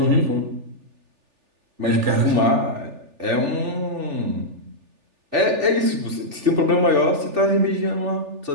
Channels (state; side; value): late; left; 3.4 ms